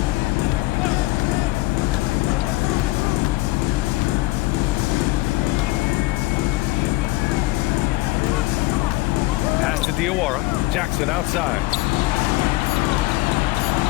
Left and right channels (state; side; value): quieter; right; 20.4 dB